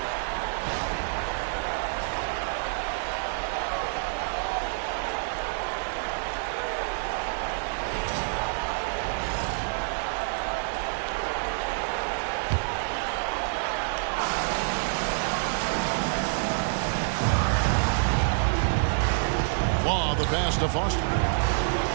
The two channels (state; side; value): silent; left; 60 dB below the other